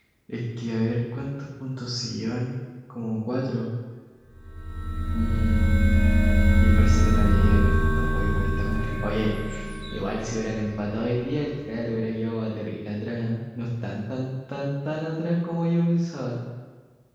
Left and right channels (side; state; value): both; identical; correlation 1.00